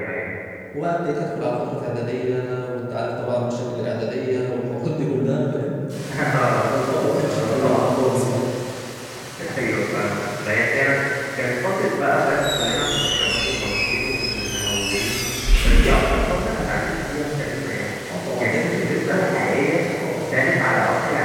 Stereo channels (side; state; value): both; identical; correlation 1.00